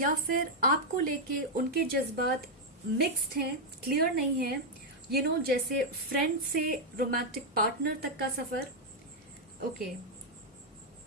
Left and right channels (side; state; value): both; normal; correlation -0.01